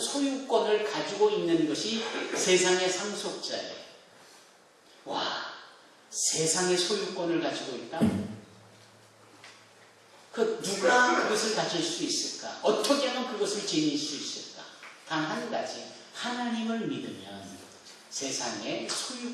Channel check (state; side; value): identical; both; correlation 1.00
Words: 가지고 있는 것이 세상의 상속자예요. 와, 세상의 소유권을 가지고 있다? 누가 그것을 가질 수 있을까? 어떻게 하면 그것을 지닐 수 있을까? 단 한 가지, 하나님을 믿으면 세상에